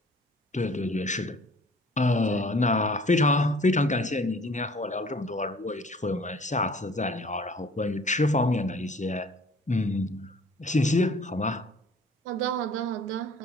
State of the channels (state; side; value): normal; both; correlation 0.51